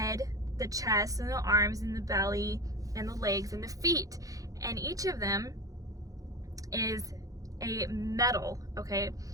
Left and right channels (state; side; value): late; left; 0.17 ms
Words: the chest, and the arms, and the belly, and the legs, and the feet. And each of them is a metal, okay?